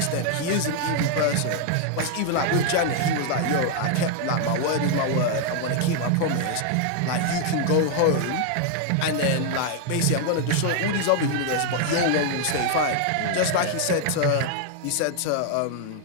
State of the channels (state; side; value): different; both; correlation 0.00